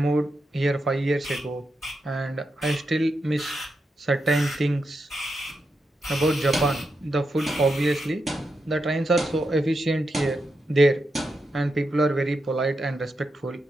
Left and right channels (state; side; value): normal; both; correlation 0.86